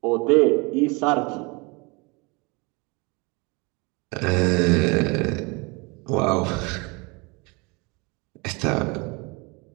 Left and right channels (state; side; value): quieter; left; 28.5 dB